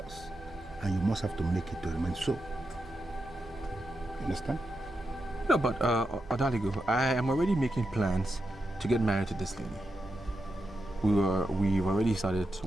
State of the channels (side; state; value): right; noise; hum, 20 dB below the sound